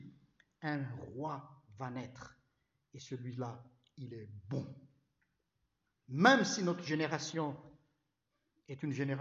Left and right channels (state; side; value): identical; both; correlation 1.00